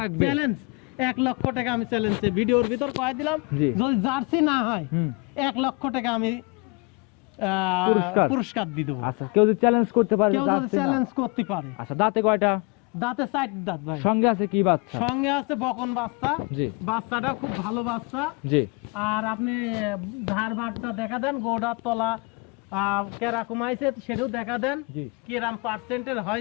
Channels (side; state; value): right; quieter; 30.2 dB